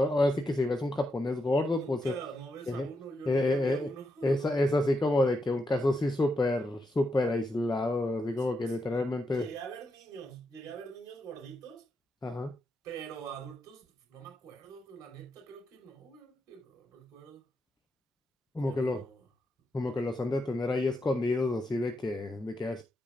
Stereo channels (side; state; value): both; normal; correlation 0.83